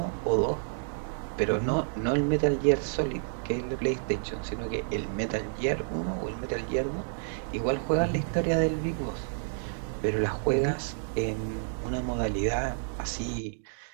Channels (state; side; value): silent; left; digital silence